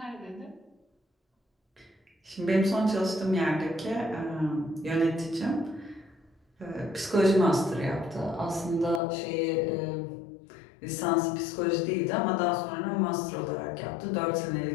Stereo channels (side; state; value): right; drops out; at 9.0 s